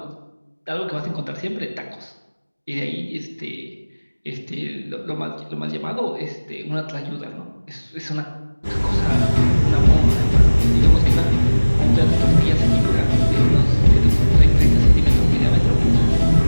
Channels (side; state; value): both; inverted; correlation -1.00